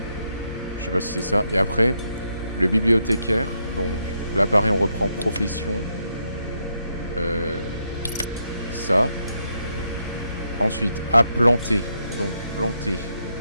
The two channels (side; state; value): both; inverted; correlation -0.79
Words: je sais pas si c'est ça. Et après, le bibliothécaire. Donc là, pareil, on reprend profession. Ça. Ensuite, à planter. Donc planter.